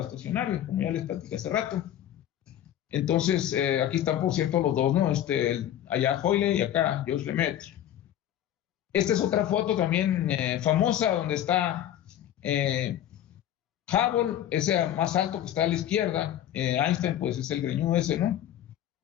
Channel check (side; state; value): right; quieter; 11.5 dB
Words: estacionario, como ya les platicé hace rato. Entonces, aquí están, por cierto, los dos, ¿no? Allá Hoyle y acá Georges Lemaitre. Esta es otra foto también famosa, donde está Hubble, ese más alto que está a la izquierda. Einstein, pues, es el greñudo ese, ¿no?